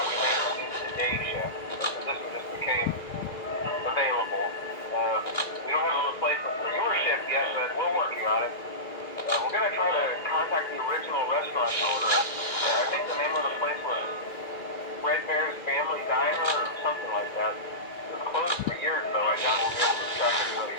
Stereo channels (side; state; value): right; late; 2.1 ms